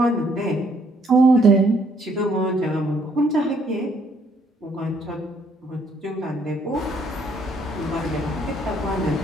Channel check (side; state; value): both; normal; correlation 0.67